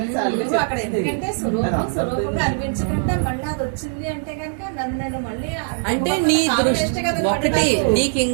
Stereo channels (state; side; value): silent; left; digital silence